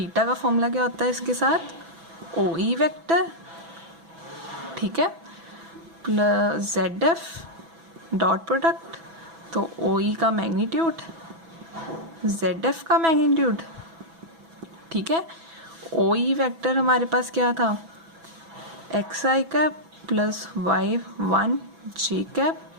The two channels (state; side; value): late; left; 6.1 ms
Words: का फॉर्मूला क्या होता है इसके साथ OE वेक्टर। ठीक है, प्लस ZF डॉट प्रोडक्ट, तो OE का मैग्नीट्यूड ZF का मैग्नीट्यूड। ठीक है, OE वेक्टर हमारे पास क्या था xi cap plus y1 j cap